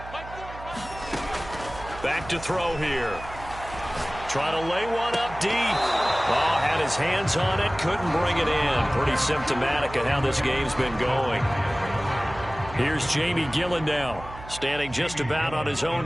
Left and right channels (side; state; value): right; noise; hum, 14 dB below the sound